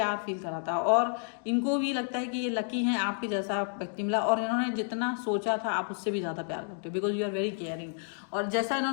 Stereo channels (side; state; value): right; silent; 58 dB below the other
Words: फील कराता है। और इनको भी लगता है कि ये लकी हैं, आपके जैसा व्यक्ति मिला, और इन्होंने जितना सोचा था आप उससे भी ज्यादा प्यार करते हो, because you are very caring. और जैसा